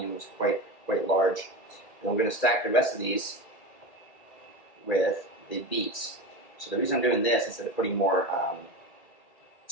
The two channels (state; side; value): late; right; 2.4 ms